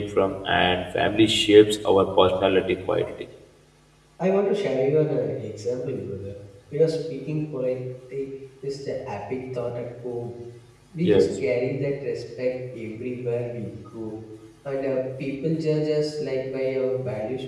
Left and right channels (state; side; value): identical; both; correlation 1.00